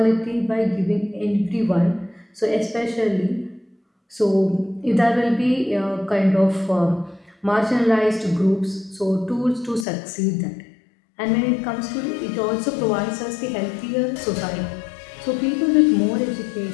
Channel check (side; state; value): right; drops out; at 9.9 s